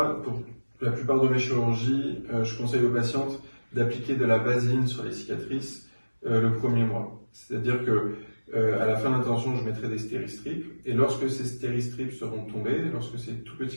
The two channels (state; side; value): inverted; both; correlation -1.00